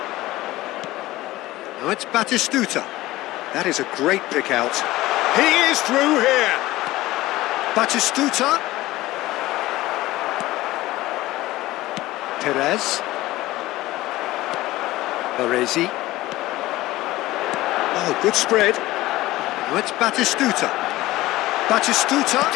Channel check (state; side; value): quieter; right; 17.5 dB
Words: Now it's Batistuta. That is a great pick out. He is through here. Batistuta. Perez. Baresi. Oh, good spread. Now it's Batistuta. Batistuta.